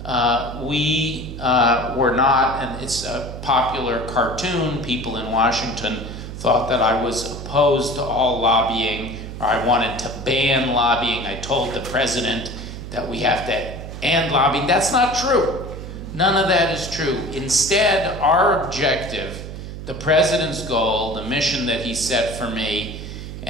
we were not, and it's a popular cartoon, people in Washington thought that I was opposed to all lobbying, or I wanted to ban lobbying. I told the president that we have to end lobbying. That's not true. None of that is true. Instead, our objective, the president's goal, the mission that he set for me,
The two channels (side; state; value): right; noise; hum, 9 dB below the sound